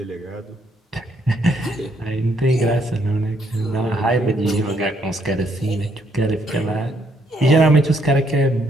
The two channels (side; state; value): both; normal; correlation 0.71